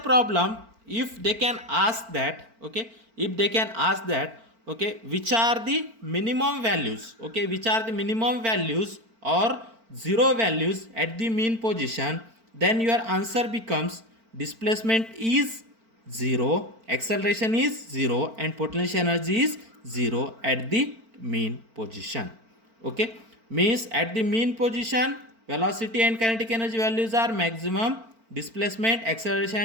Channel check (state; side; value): late; left; 4.4 ms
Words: if they can ask that, okay, if they can ask that, okay, which are the minimum values, okay, which are the minimum values or zero values at the mean position, then your answer becomes displacement is 0, acceleration is 0 and potential energy is 0 at the mean position. Okay, means at the mean position velocity and kinetic energy values are maximum, displacement, acceleration